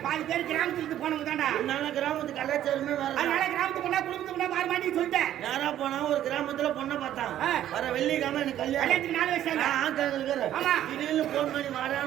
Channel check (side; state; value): left; quieter; 11.8 dB